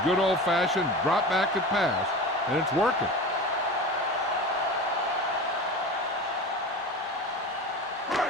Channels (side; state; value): both; normal; correlation 0.31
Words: good old-fashioned drop back and pass, and it's working.